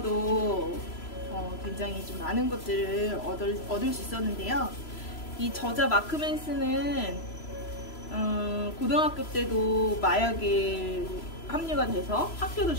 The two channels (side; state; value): right; late; 3.0 ms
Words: 굉장히 좀 많은 것들을 얻을 수 있었는데요. 이 저자 마크 맨슨은 고등학교 때도 마약에 합류가 돼서 학교도